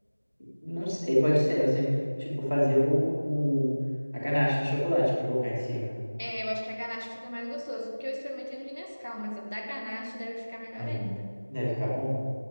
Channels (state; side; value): inverted; both; correlation -1.00